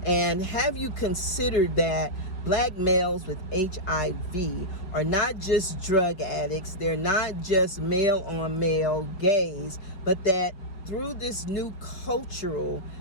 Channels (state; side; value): late; right; 5.2 ms